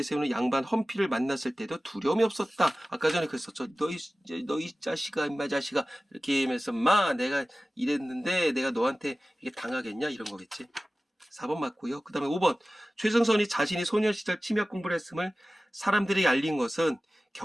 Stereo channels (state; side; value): normal; both; correlation 0.97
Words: 양반 험피를 만났을 때도 두려움이 없었다. 아까 전에 그랬었죠. 너희 자식아, 임마 자식아 이렇게 하면서 마 내가 이랬는데 내가 너한테 이게 당하겠냐 이런 거겠지. 4번 맞고요. 그 다음에 5번 최승선이 자신이 소년 시절 침약 공부를 했음을 사람들이 알린 것은